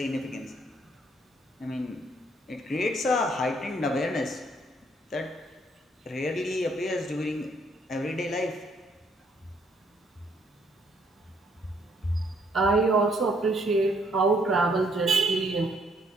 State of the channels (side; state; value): both; normal; correlation 0.68